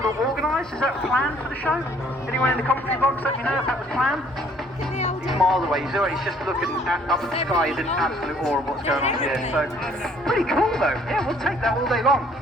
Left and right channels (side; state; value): both; normal; correlation 0.60